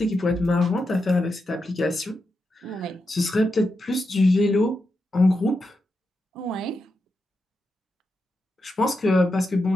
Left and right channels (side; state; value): both; normal; correlation 0.87